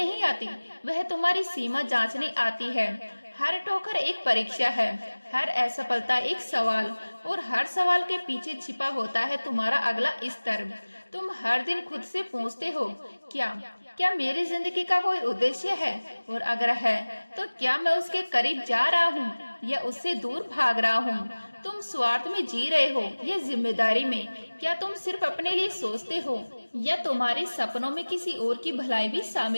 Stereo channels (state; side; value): inverted; both; correlation -1.00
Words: आती, वह तुम्हारी सीमा जांचने आती है। हर ठोकर एक परीक्षा है, हर असफलता एक सवाल, और हर सवाल के पीछे छिपा होता है तुम्हारा अगला स्तर। तुम हर दिन खुद से पूछते हो, क्या क्या मेरी जिंदगी का कोई उद्देश्य है? और अगर है तो क्या मैं उसके करीब जा रहा हूँ या उससे दूर भाग रहा हूँ? तुम स्वार्थ में जी रहे हो या जिम्मेदारी में? क्या तुम सिर्फ अपने लिए सोचते हो या तुम्हारे सपनों में किसी और की भलाई भी